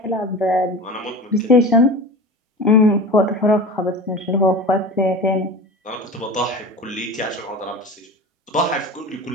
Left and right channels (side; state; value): both; normal; correlation 0.33